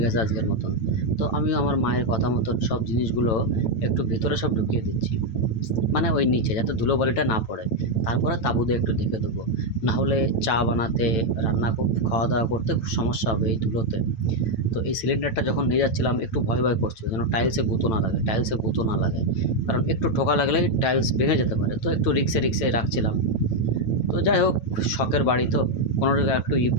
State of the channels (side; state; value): right; late; 9.0 ms